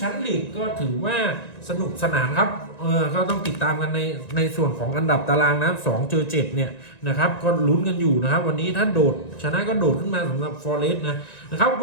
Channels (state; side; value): late; right; 1.9 ms